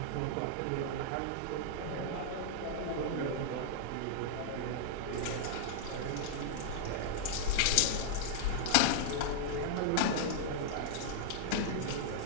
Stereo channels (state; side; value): different; both; correlation -0.01